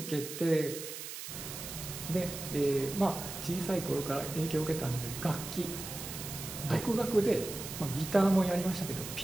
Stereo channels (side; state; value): right; noise; hiss, 8 dB below the sound